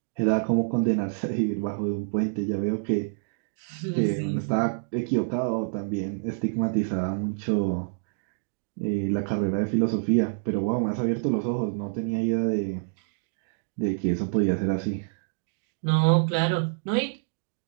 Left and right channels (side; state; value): left; silent; digital silence